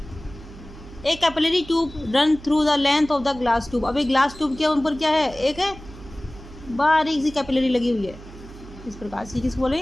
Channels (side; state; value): right; noise; hum, 17 dB below the sound